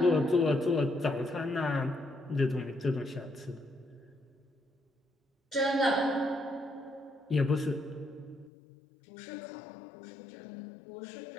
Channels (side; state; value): right; drops out; at 8.5 s